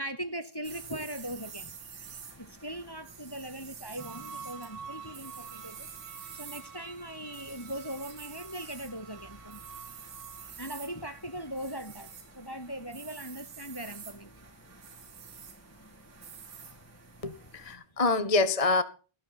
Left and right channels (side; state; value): right; late; 1.6 ms